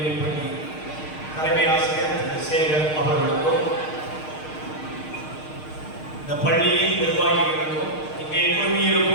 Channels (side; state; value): right; late; 6.5 ms